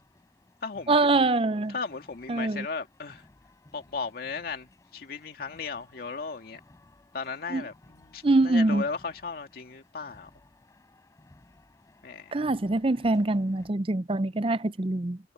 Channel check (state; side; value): normal; both; correlation 0.51